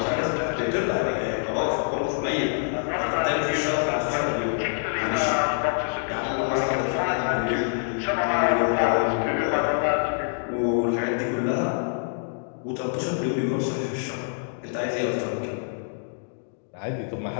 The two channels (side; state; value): right; silent; digital silence